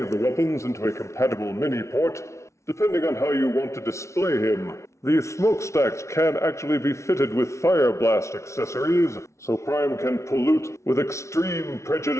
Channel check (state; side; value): late; right; 0.14 ms